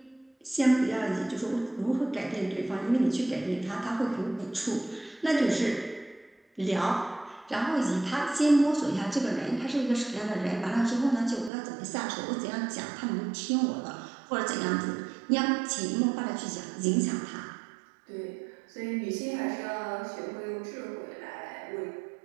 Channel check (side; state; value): left; drops out; at 11.5 s